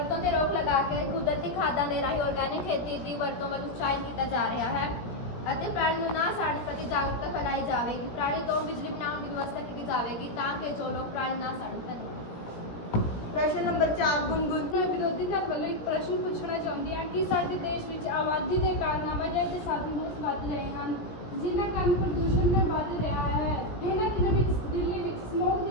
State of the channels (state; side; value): late; right; 17 ms